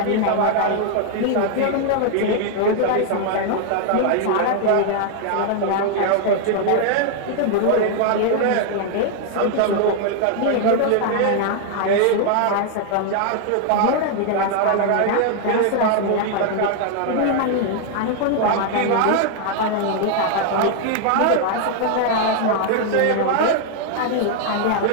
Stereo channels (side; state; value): both; different; correlation 0.00